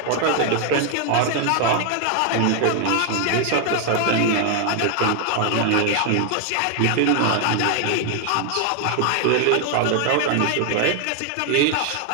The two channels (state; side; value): different; both; correlation 0.00